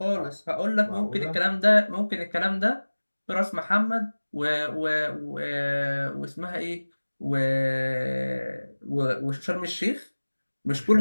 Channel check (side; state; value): both; inverted; correlation -1.00